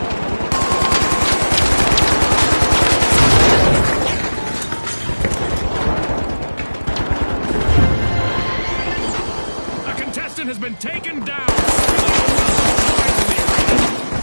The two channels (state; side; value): inverted; both; correlation -1.00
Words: has been taken down.